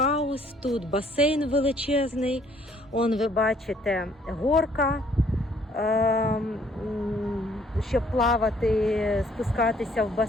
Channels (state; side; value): normal; both; correlation 0.62